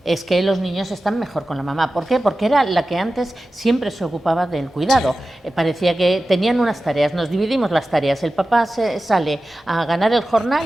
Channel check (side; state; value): both; normal; correlation 0.94